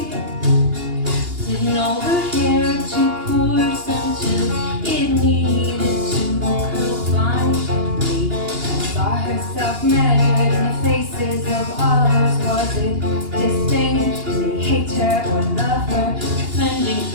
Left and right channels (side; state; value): left; late; 2.8 ms